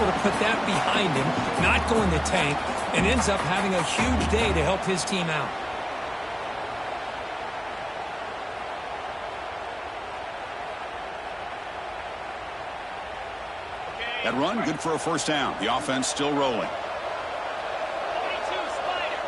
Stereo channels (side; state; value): both; identical; correlation 1.00